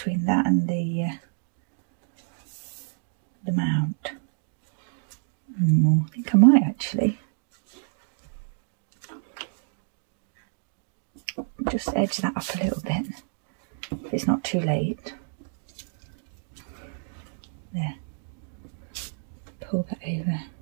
that and the mount? I think I might actually. Just edge that up a little bit if it's not too late. There. Pull that over.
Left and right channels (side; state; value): left; silent; digital silence